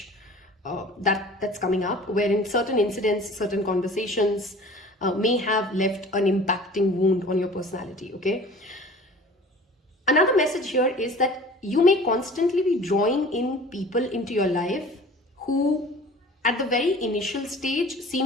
that's coming up, wherein certain incidents, certain conversations may have left an impacting wound on your personality, okay? Another message here is that you may constantly be drawing in people into your life who at the very initial stage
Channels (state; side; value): normal; both; correlation 0.44